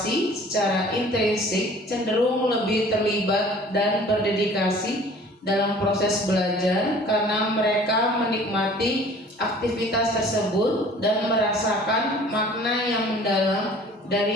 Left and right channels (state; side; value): normal; both; correlation 0.49